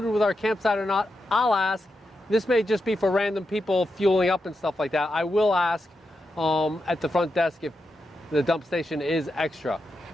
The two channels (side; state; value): both; normal; correlation 0.87